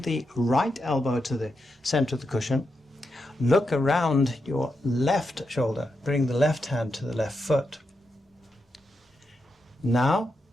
the right elbow to the center of the cushion. Look around your left shoulder. Bring the left hand to the left foot. Now,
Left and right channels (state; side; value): normal; both; correlation 0.85